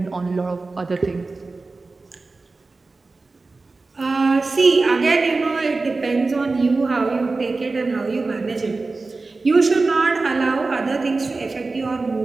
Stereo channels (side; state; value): left; quieter; 3.7 dB